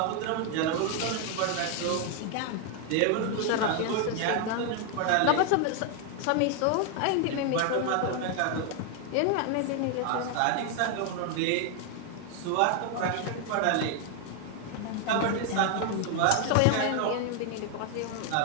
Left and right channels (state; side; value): different; both; correlation 0.00